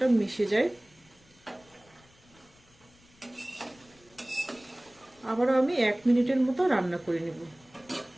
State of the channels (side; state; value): left; noise; rumble, 29 dB below the sound